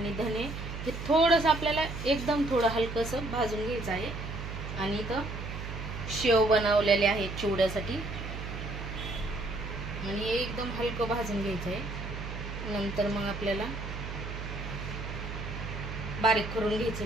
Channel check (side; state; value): right; noise; hum, 7 dB below the sound